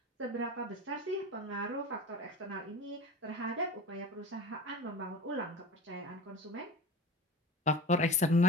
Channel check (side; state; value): both; normal; correlation 0.33